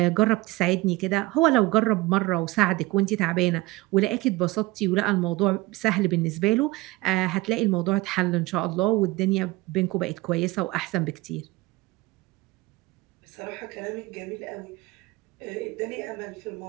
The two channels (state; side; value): quieter; left; 20.3 dB